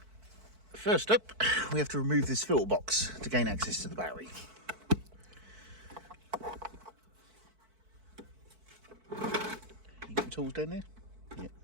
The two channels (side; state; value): left; late; 4.5 ms